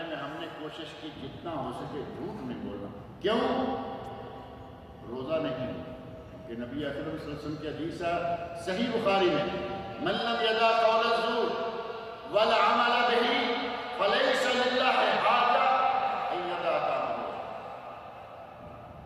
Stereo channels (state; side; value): identical; both; correlation 1.00